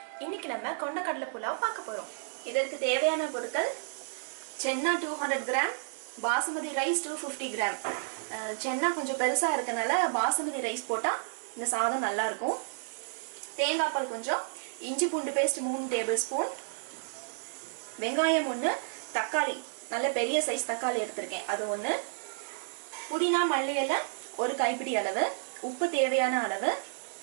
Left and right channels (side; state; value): left; silent; digital silence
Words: இன்னைக்கு நம்ம கொண்டக்கடலை புலாவ் பார்க்க போறோம். இதற்கு தேவையான பொருட்கள் சென்னா 200 கிராம், பாசுமதி ரைஸ் 250 கிராம். சென்னா கொஞ்சம் பெருசா இருக்கனால பாசுமதி ரைஸ் போட்டா இந்த சாதம் நல்லா இருக்கும். தேங்காய் பால் கொஞ்சம், இஞ்சி பூண்டு பேஸ்ட் 3 டேபிள் ஸ்பூன், வெங்காயம் 1, தக்காளி நல்ல பெரிய சைஸ் தக்காளி எடுத்திருக்கேன் அது 1, புதினா மல்லி இலை 1 கைப்பிடி அளவு, உப்பு தேவையான அளவு,